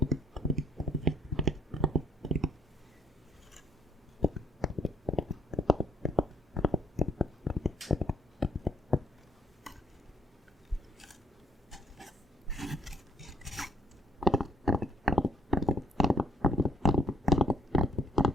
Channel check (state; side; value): normal; both; correlation 0.63